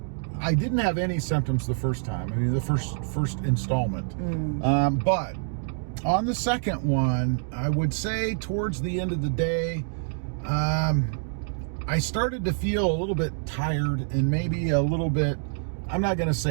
I didn't have any symptoms the first time. I mean, the first installment. But on the second one, I would say towards the end of the day, I started to feel a little bit tired and maybe a little bit, I'm not going to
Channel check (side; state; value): left; silent; digital silence